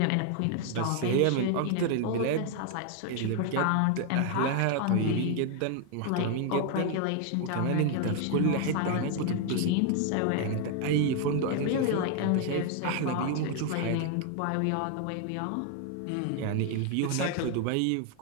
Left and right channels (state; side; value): different; both; correlation 0.00